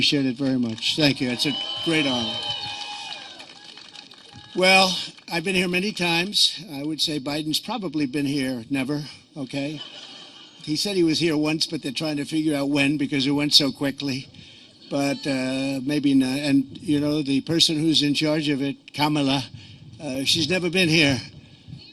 it very much. Thank you. It's a great honor. Well, I've been here many times. I would say Biden's probably been here never, okay? He said he was here once, but they're trying to figure out when, because it went so quickly. But maybe not. And, you know, the person who's in charge of it, Kamala, she's never been here.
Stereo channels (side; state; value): both; identical; correlation 1.00